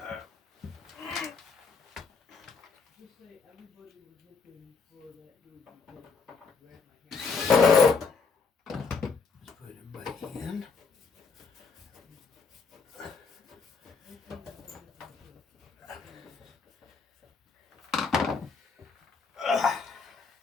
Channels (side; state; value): right; quieter; 4.9 dB